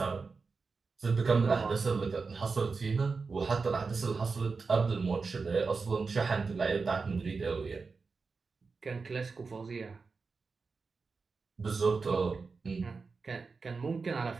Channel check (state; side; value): quieter; left; 4.5 dB